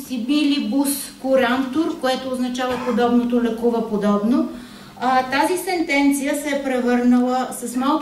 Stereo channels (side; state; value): both; identical; correlation 1.00